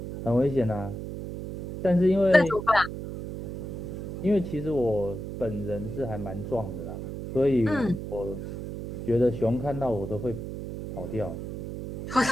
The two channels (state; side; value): noise; right; hum, 7 dB below the sound